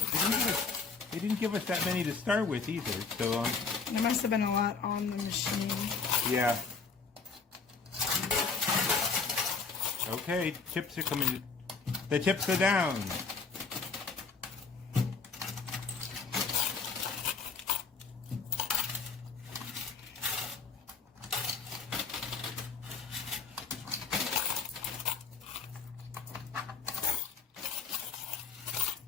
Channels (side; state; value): right; quieter; 4.9 dB